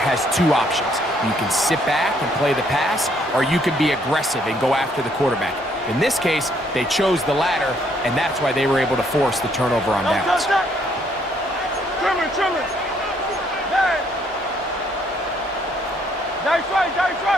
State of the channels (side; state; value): both; normal; correlation 0.68